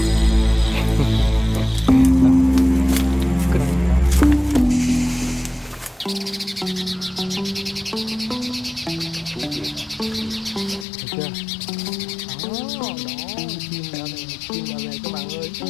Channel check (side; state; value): right; drops out; at 10.9 s